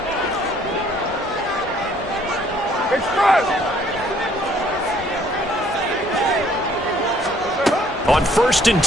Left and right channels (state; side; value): normal; both; correlation 0.61